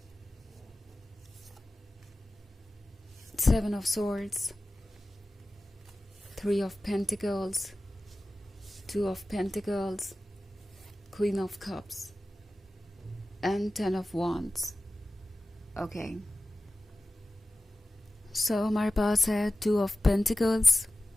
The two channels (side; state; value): both; normal; correlation 0.96